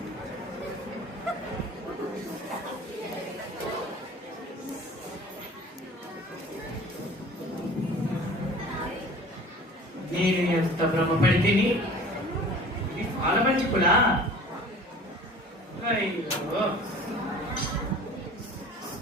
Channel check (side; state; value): both; normal; correlation 0.44